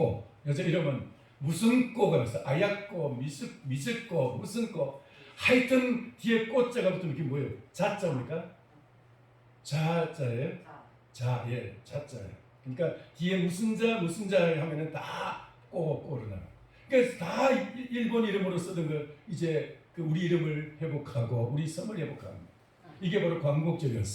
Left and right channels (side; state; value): both; identical; correlation 1.00